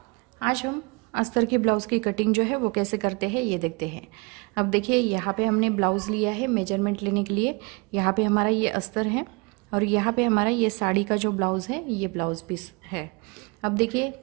आज हम अस्तर के ब्लाउज़ की कटिंग जो है वो कैसे करते हैं ये देखते हैं। अब देखिए, यहाँ पे हमने ब्लाउज़ लिया है मेजरमेंट लेने के लिए। यहाँ पे हमारा ये अस्तर है और यहाँ पे हमारा ये साड़ी का जो ब्लाउज़ है ये ब्लाउज़ पीस है। अब देखिए,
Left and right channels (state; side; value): quieter; left; 28.9 dB